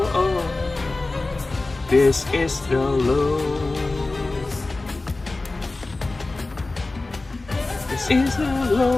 of. This is the logo. This is the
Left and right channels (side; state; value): right; quieter; 3.2 dB